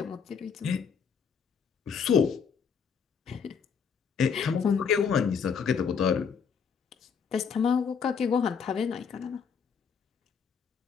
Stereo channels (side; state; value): right; quieter; 6.4 dB